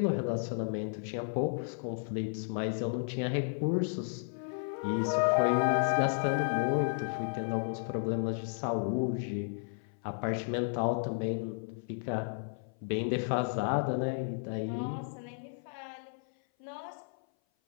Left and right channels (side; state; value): right; silent; 56 dB below the other